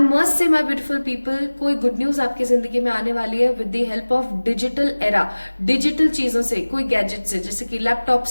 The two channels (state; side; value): inverted; both; correlation -1.00